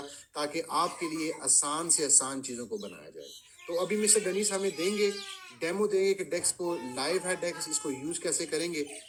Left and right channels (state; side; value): identical; both; correlation 1.00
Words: ताकि आपके लिए आसान से आसान चीज़ों को बनाया जाए। तो अभी मिस्टर डेनिस हमें देंगे, डेमो देंगे कि डेक्स को लाइव है, डेक्स इसको यूज कैसे करेंगे।